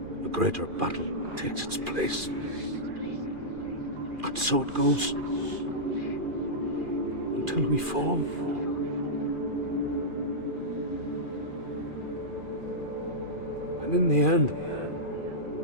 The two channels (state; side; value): late; left; 2.4 ms